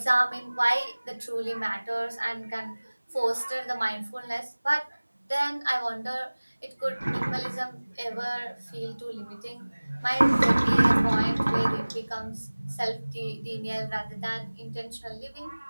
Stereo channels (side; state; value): both; inverted; correlation -1.00